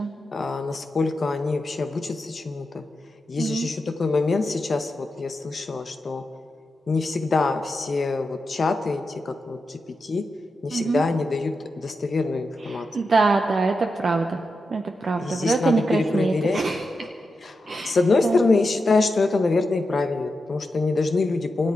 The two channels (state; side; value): normal; both; correlation 0.88